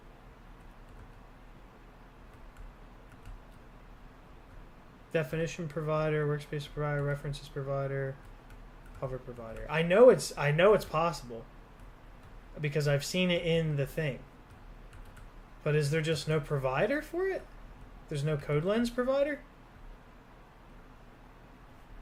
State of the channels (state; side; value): identical; both; correlation 1.00